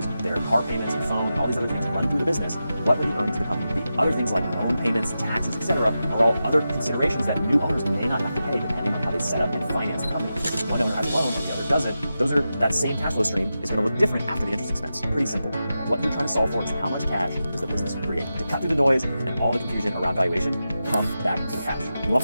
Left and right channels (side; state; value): both; inverted; correlation -0.91